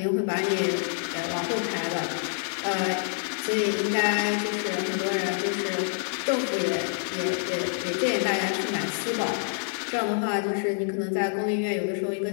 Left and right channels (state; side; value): silent; right; digital silence